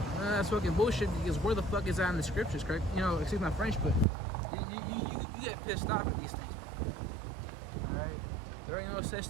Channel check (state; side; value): drops out; left; at 4.0 s